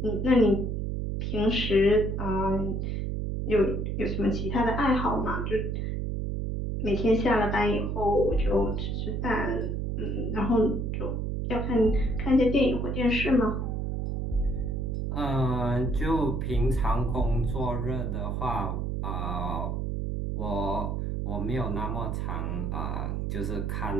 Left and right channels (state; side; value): noise; right; hum, 1 dB below the sound